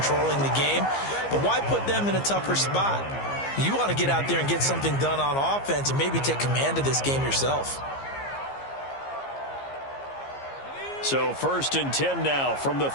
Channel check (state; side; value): late; right; 15 ms